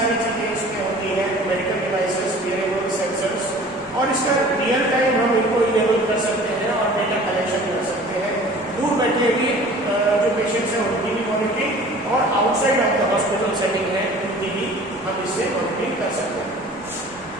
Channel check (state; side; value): normal; both; correlation 0.46